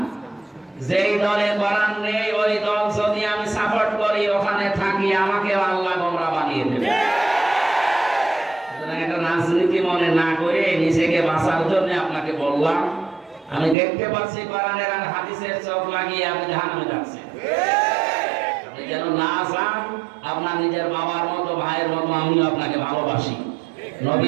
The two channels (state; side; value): drops out; left; at 13.8 s